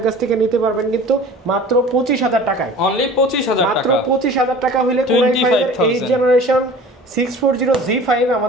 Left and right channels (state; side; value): normal; both; correlation 0.43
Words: কাছ থেকে নিতে পারবেন কিন্তু মাত্র 25000 টাকায়। অনলি 25000 টাকা, মাত্র 25000 টাকা হলে Core i5 এর 8 জেনারেশন 640G5